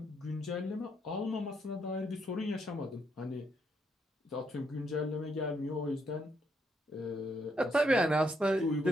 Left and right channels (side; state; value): both; normal; correlation 0.75